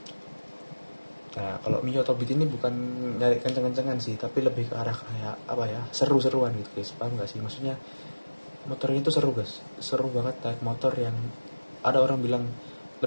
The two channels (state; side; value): inverted; both; correlation -1.00